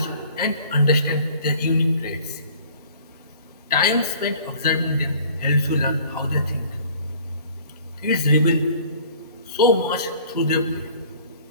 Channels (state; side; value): inverted; both; correlation -0.51